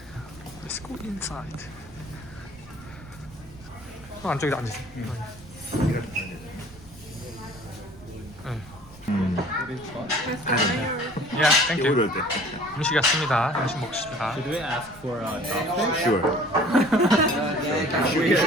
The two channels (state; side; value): noise; right; rumble, 21 dB below the sound